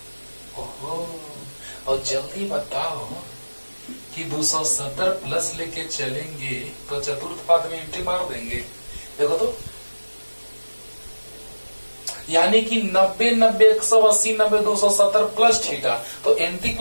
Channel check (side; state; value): both; inverted; correlation -1.00